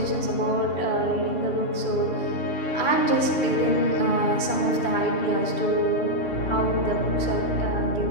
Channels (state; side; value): late; right; 3.0 ms